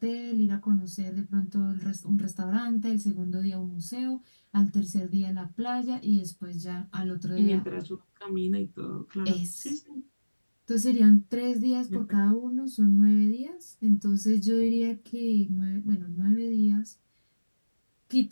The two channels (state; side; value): inverted; both; correlation -1.00